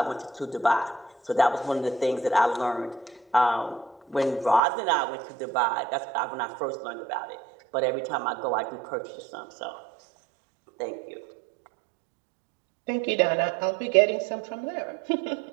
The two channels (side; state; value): left; drops out; at 4.6 s